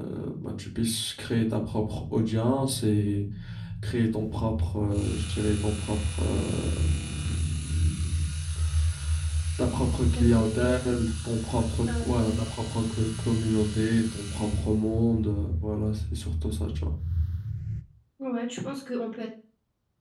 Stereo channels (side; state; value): both; identical; correlation 1.00